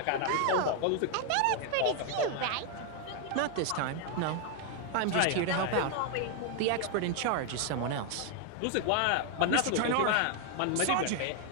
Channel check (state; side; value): different; both; correlation 0.00